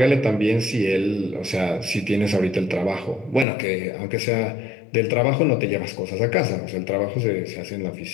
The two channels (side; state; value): right; drops out; at 3.5 s